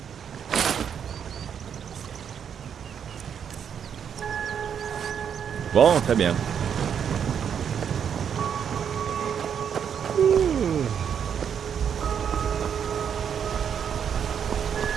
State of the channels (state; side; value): quieter; left; 8.0 dB